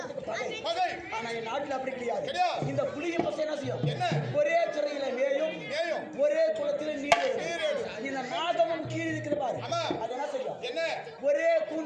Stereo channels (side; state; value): both; identical; correlation 1.00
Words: பகை. பகை. ஆனா என் நாட்டுல அப்படி கிடையாது. கிடையாது. இந்த புலிய பசு என்ன செய்யும்? என்ன? ஒரே துறையில மேயும் மேயும். ஒரே குளத்தில நீர் நீரேடும். இந்த நாகமும் கீழ் இருக்கிற பாரு. ஆமா. அது என்ன செய்யும்? என்ன? ஒரே